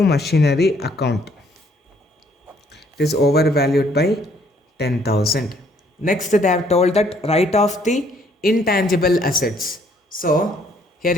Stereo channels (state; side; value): normal; both; correlation 0.64